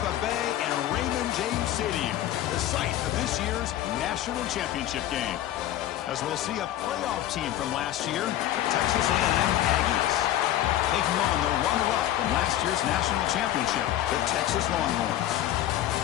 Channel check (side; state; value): right; quieter; 12.9 dB